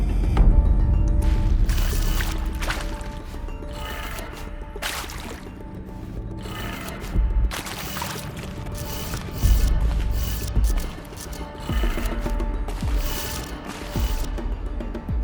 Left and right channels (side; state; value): both; identical; correlation 1.00